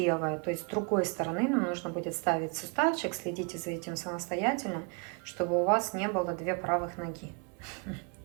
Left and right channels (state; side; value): quieter; left; 33.9 dB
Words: То есть с другой стороны нам нужно будет ставить суставчик. Следите за этим самостоятельно, чтобы у вас не было 2 правых ноги.